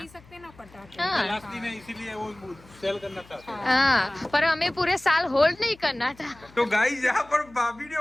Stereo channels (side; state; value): left; noise; hum, 25 dB below the sound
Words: सकते ना पटाखे। हाँ। लास्ट दिन है इसीलिए वो सेल करना चाहते हैं। हाँ, पर हमें पूरे साल होल्ड नहीं करना था। तो गाइस यहाँ पर भाभी ने